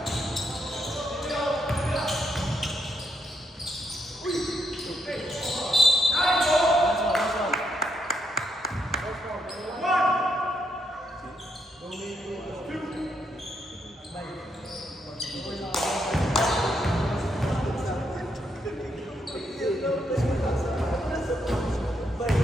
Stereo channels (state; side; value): normal; both; correlation 0.78